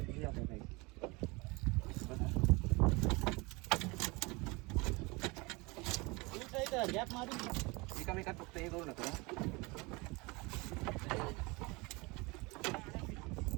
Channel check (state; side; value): quieter; left; 25.8 dB